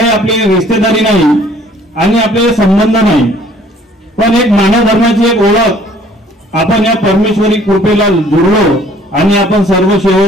आपली रिश्तेदारी नाही आणि आपले संबंध नाही, पण एक मानव धर्माची एक ओळख आपण या परमेश्वरी कृपेला जुळलो आणि आपण सर्व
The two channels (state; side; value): normal; both; correlation 0.57